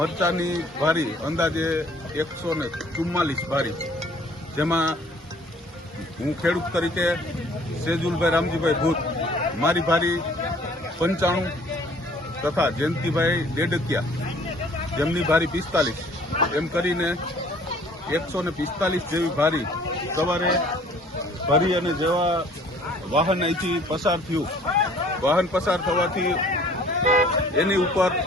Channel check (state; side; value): normal; both; correlation 0.55